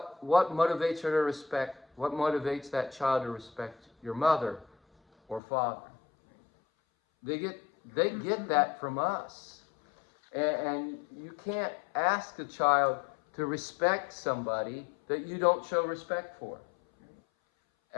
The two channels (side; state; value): right; drops out; at 5.4 s